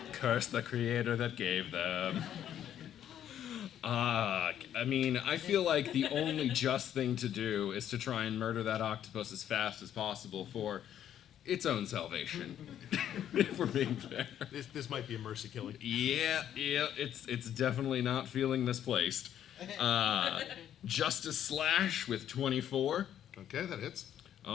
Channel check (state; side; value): quieter; right; 10.4 dB